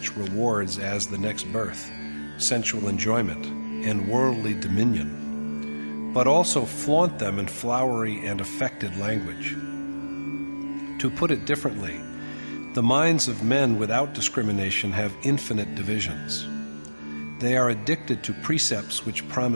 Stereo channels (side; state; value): both; inverted; correlation -1.00